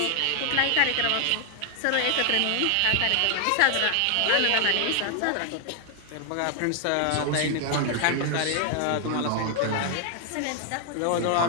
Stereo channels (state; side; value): different; both; correlation 0.00